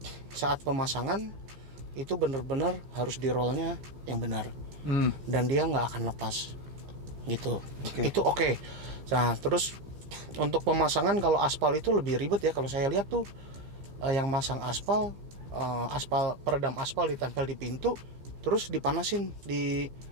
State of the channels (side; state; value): left; late; 15 ms